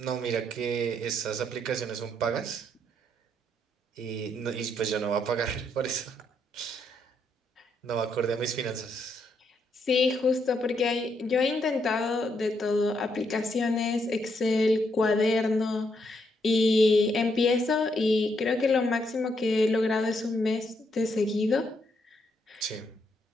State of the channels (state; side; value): normal; both; correlation 0.76